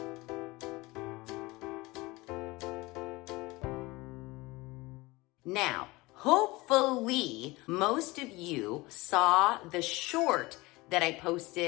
Now, hopefully most of you saw the short that I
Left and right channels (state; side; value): quieter; right; 21.9 dB